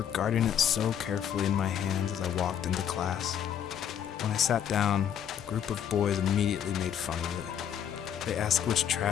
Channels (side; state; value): right; quieter; 9.2 dB